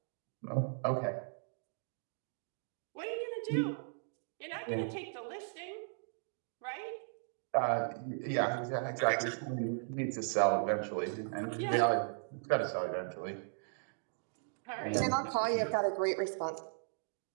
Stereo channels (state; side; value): silent; left; digital silence